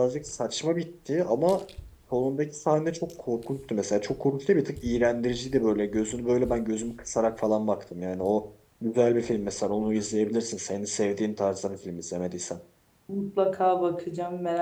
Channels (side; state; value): both; identical; correlation 1.00